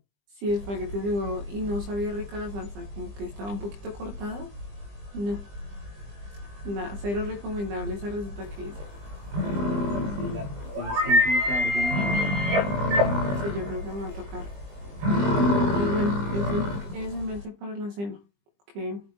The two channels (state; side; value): late; left; 20 ms